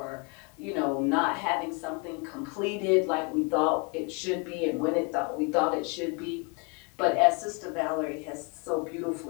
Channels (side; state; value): right; quieter; 33.3 dB